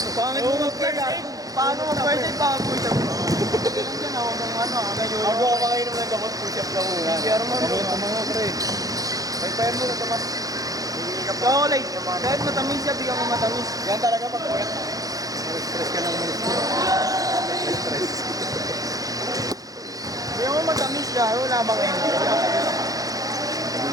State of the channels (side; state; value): left; late; 0.17 ms